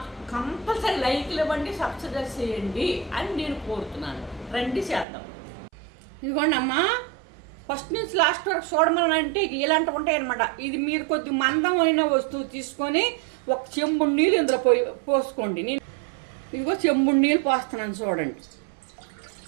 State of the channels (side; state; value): left; drops out; at 5.1 s